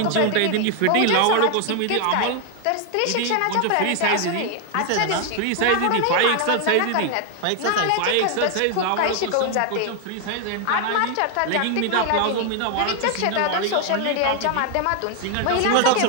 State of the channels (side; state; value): both; different; correlation 0.00